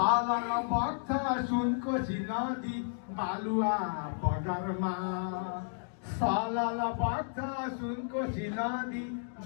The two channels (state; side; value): silent; right; digital silence